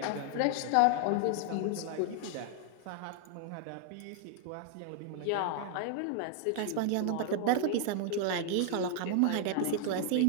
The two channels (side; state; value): both; different; correlation 0.00